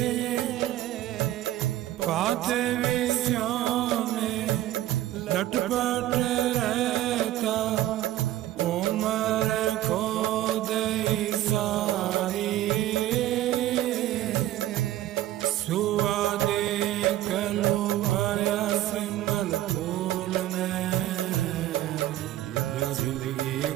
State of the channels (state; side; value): quieter; left; 14.2 dB